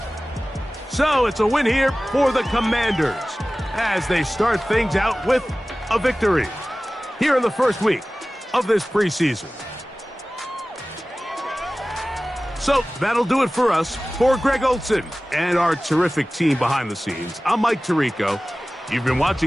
So it's a win here for the Commanders as they start things out with a victory here in the 1st week of this preseason. So that'll do it for us. For Greg Olson and our terrific team behind the scenes, I'm Mike Tirico. You've been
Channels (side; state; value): both; normal; correlation 0.97